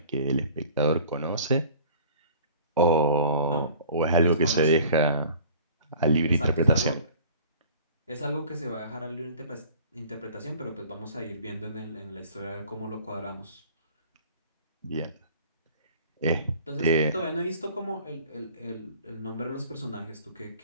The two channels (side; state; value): both; inverted; correlation -0.47